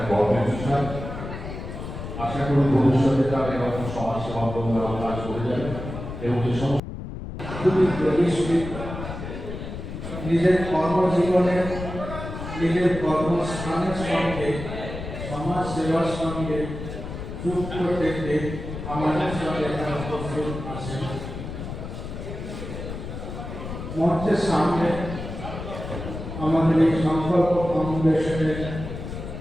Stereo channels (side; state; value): left; noise; rumble, 8 dB below the sound